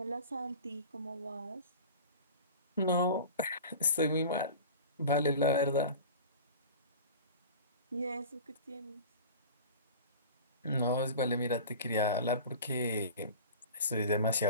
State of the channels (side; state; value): both; inverted; correlation -0.37